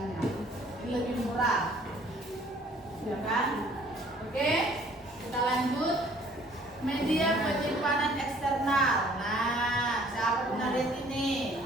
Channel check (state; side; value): normal; both; correlation 0.57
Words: Ini lebih murah, ya kan? Oke, kita lanjut. Media penyimpanan eksternal. Nah, siapa pernah lihat ini?